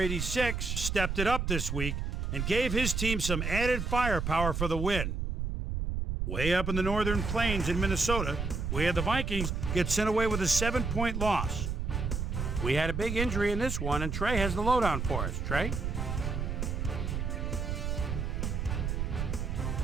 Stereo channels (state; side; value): noise; right; rumble, 2 dB below the sound